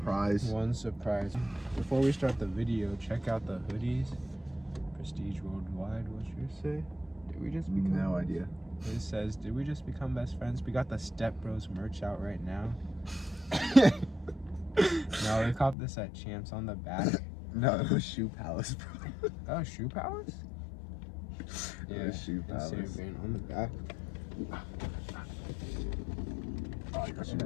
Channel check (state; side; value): drops out; right; at 15.8 s